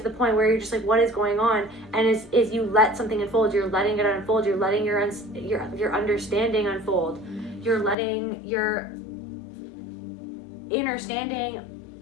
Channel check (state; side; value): drops out; right; at 8.0 s